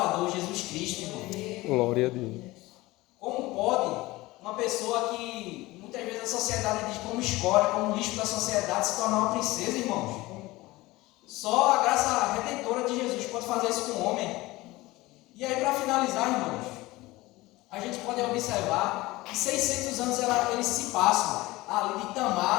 Jesus Cristo, irmão. Glória a Deus. Como pode uma pessoa que muitas vezes a sociedade diz como escória, como lixo da sociedade, se tornar uma princesa, irmãos? Só a graça redentora de Jesus pode fazer isso com o homem. E aí, para finalizar, irmãos, a gente pode observar que 600 anos eles se passam ali de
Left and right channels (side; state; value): right; quieter; 19.8 dB